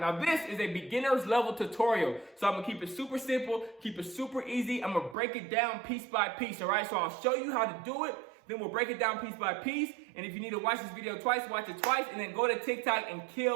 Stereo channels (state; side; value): drops out; left; at 5.2 s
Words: Now this is a beginner's level tutorial. So I'm gonna keep it super simple, keep it super easy. I'm gonna break it down piece by piece, all right? So I'll show you how to do it, then we'll break it down piece by piece. And if you need to watch this video twice, watch it twice, and then go to TikTok and